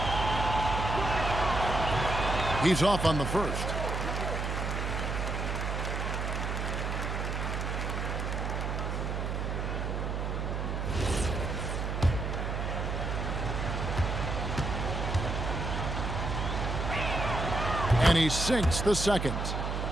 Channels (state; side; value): noise; right; hum, 2 dB below the sound